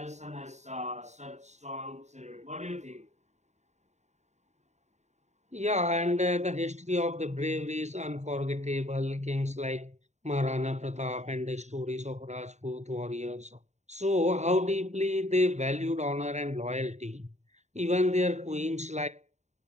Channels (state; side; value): late; left; 0.33 ms